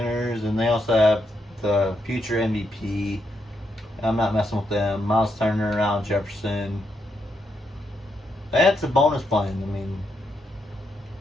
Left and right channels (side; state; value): both; normal; correlation 0.80